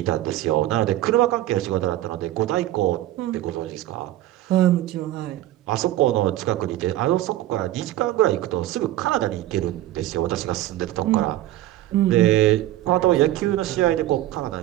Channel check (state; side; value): quieter; left; 14.6 dB